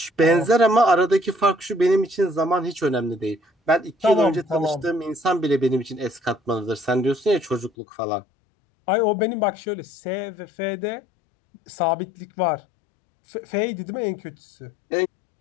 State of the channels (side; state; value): right; drops out; at 7.7 s